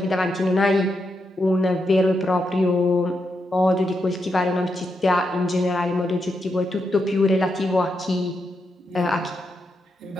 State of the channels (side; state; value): both; normal; correlation 0.84